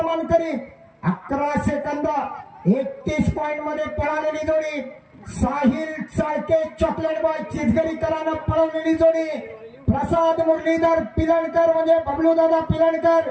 मानकरी 11 सेकंद 31 पॉइंट मध्ये पळालेली जोडी साहिल चाळके चॉकलेट बॉय चिचगरीकरांना पळवलेली जोडी प्रसाद मुरलीधर पिलणकर म्हणजे बबलू दादा पिलणकर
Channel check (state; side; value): identical; both; correlation 1.00